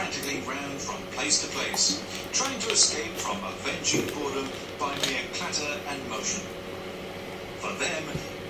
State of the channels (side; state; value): both; identical; correlation 1.00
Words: round from place to place, trying to escape from avenging boredom by mere clatter and motion. For them,